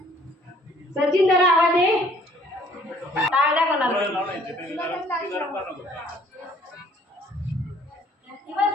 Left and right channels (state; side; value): normal; both; correlation 0.59